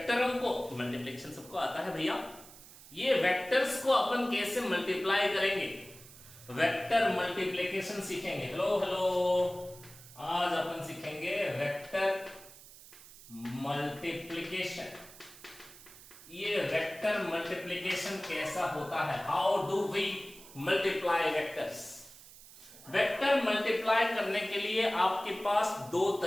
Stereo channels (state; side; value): noise; right; hiss, 19 dB below the sound